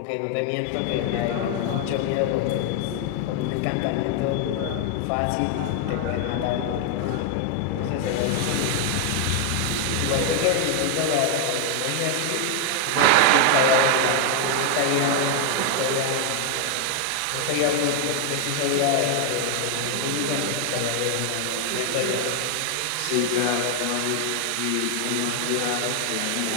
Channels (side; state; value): both; different; correlation 0.00